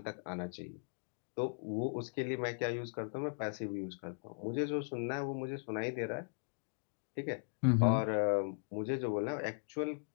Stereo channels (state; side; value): silent; right; digital silence